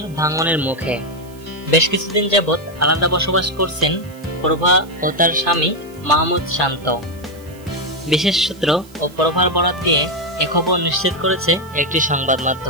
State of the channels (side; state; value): right; noise; hiss, 25 dB below the sound